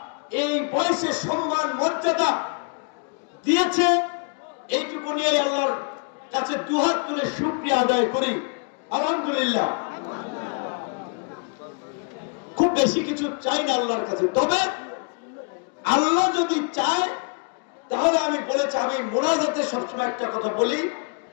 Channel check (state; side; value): quieter; right; 38.4 dB